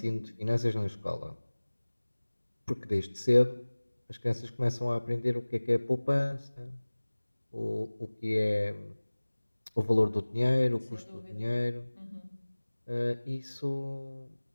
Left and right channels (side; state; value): both; inverted; correlation -1.00